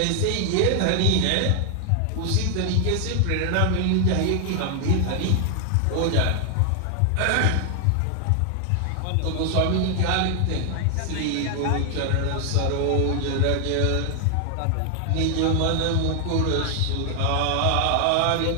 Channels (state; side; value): different; both; correlation 0.00